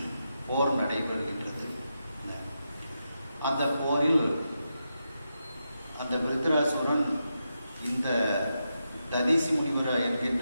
போர் நடைபெறுகின்றது. அந்த போரில் அந்த விருத்திராசுரன் இந்த ததீசி முனிவர் என்கின்ற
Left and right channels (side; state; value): both; inverted; correlation -0.86